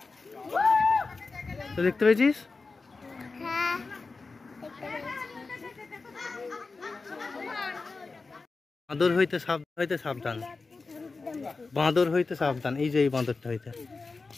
তো দেখতে পেয়েছিস বাঁদর হইতে সাবধান বাঁদর হইতে সাবধান এই যে এই বাঁদরটা হইতে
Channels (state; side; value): quieter; right; 4.0 dB